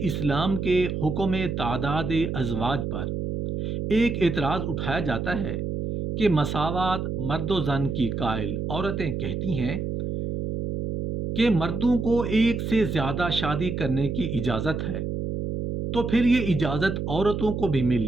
اسلام کے حکم تعداد ازواج پر ایک اعتراض اٹھایا جاتا ہے کہ مساوات مرد و زن کی قائل عورتیں کہتی ہیں کہ مردوں کو ایک سے زیادہ شادی کرنے کی اجازت ہے، تو پھر یہ اجازت عورتوں کو بھی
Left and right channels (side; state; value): right; noise; hum, 3 dB below the sound